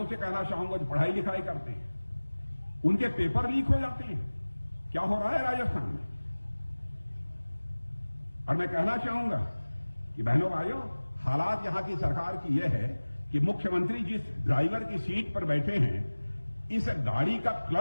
से कहना चाहूंगा जो पढ़ाई लिखाई करते हैं, उनके पेपर लीक हो जाते हैं। क्या हो रहा है राजस्थान में? और मैं कहना चाहूंगा कि बहनों भाइयों, हालात यहां की सरकार की यह है कि मुख्यमंत्री जिस ड्राइवर की सीट पर बैठे हैं, इस गाड़ी का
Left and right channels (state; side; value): inverted; both; correlation -1.00